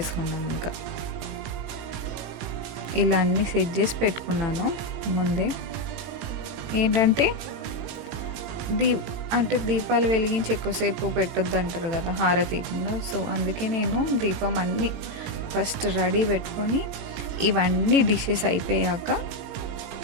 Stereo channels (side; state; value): left; late; 18 ms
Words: ఇంకా ఇలా అన్నీ సెట్ చేసి పెట్టుకున్నాను ముందే. ఏంటంటే దీపాలు వెలిగించి ఎక్కువసేపు పెట్టొద్దు అంటారు కదా హారతీయకుండా. సో అందుకే నేను దీపం అన్నీ ఫస్ట్ రెడీ పెట్టుకొని ఇవన్నీ డిషెస్ అయిపోయాక